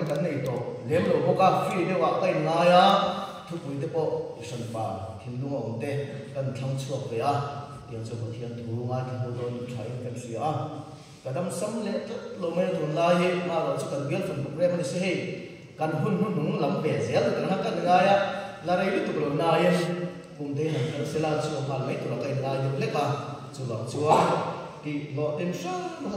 cái này to lem lo ko ka free de wa kai nga ya thu pui te po san pa hin lu ngom te kan thang chuak ve a tiang chu ko thian thu nga ki ho don thai kan sia a kadam sam le lo me thun la hi ma ro chu kan bial fan program ni se he kan hun hun lam ve zel kan ha kan nga ya la rei tu lo na yen kum te han kan sela chu ma mai tu la kai la yu le ka chu lo chu ki lo tem sa ma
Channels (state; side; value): identical; both; correlation 1.00